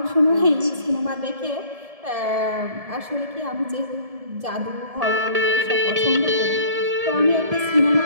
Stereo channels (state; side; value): late; left; 1.7 ms